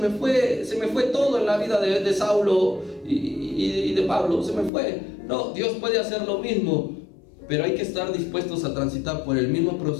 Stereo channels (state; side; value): drops out; right; at 4.7 s